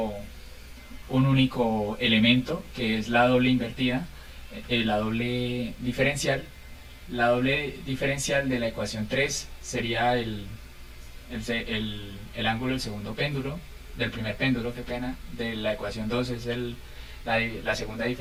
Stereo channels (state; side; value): identical; both; correlation 1.00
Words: un único elemento, que es la doble invertida, la doble diferencial. La doble diferencial de la ecuación 3 sería el ángulo del segundo péndulo, del primer péndulo, qué pena. De la ecuación 2 es la segunda